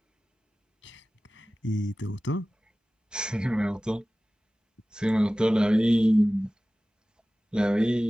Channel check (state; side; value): normal; both; correlation 0.97